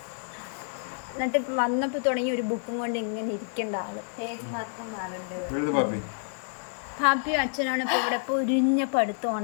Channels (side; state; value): right; silent; 59 dB below the other